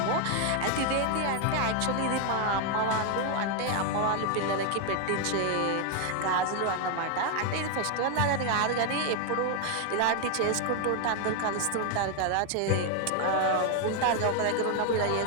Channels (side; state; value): both; different; correlation 0.01